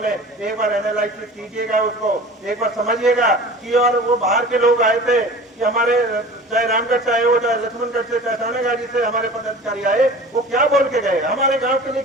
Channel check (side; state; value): both; normal; correlation 0.40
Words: एक बार एनालाइसिस कीजिएगा उसको, एक बार समझिएगा कि और वो बाहर के लोग आए थे कि हमारे चाहे रामगढ़ से आए हो, चाहे लक्ष्मणगढ़ से, चाहे थानागाजी से हमारे पदाधिकारी आए, वो क्या बोल के गए, हमारे गांव के लिए